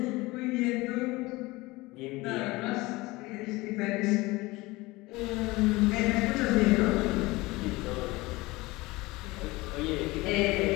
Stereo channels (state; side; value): quieter; right; 21.5 dB